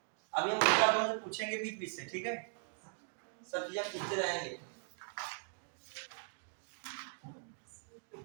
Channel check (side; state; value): left; silent; digital silence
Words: अभी हम दूसरा क्वेश्चन पूछेंगे बीच बीच से, ठीक है? सब चीजें पूछते रहेंगे।